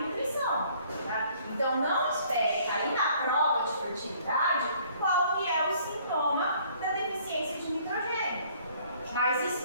nutrição. Tá? Então, não espere cair na prova de fertilidade qual que é o sintoma da deficiência de nitrogênio. Mas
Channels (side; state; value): both; inverted; correlation -0.59